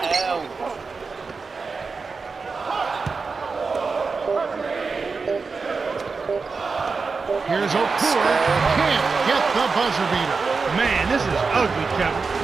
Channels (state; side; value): quieter; left; 4.6 dB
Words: Here's Okur. Can't get the buzzer beater. Man, this is ugly, Kevin.